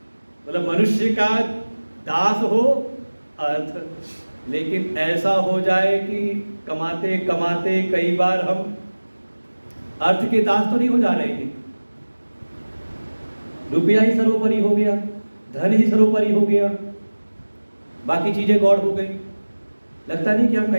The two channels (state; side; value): inverted; both; correlation -1.00